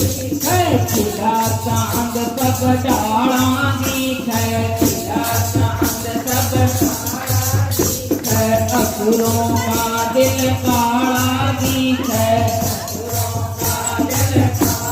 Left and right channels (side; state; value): both; identical; correlation 1.00